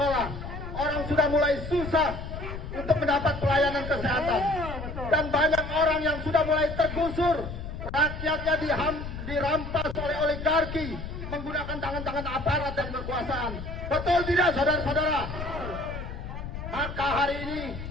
orang sudah mulai susah untuk mendapat pelayanan kesehatan, dan banyak orang yang sudah mulai tergusur, rakyatnya dirampas oleh oligarki menggunakan tangan-tangan aparat dan kekuasaan. Betul tidak, saudara-saudara? Maka hari ini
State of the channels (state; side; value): noise; left; rumble, 8 dB below the sound